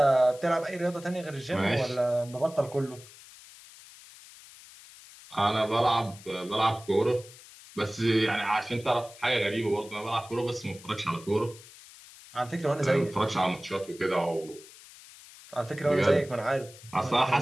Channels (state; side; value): noise; left; hiss, 20 dB below the sound